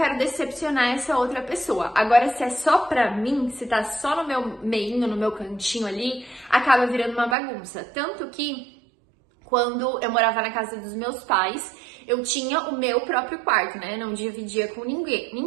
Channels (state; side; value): drops out; left; at 7.4 s